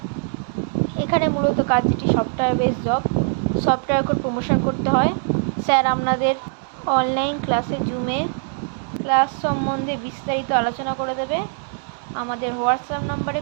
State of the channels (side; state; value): left; silent; 64 dB below the other